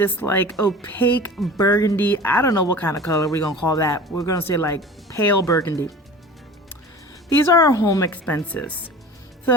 like opaque burgundy, I don't know what kind of color we're gonna call that. We're gonna say like pale burgundy. These are our home expenses.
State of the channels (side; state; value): both; normal; correlation 0.39